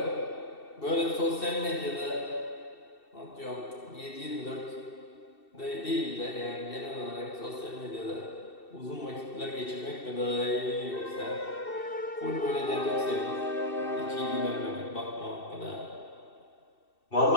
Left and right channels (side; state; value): right; late; 2.7 ms